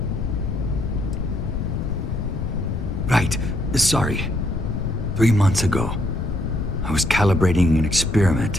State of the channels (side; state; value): left; noise; rumble, 3 dB below the sound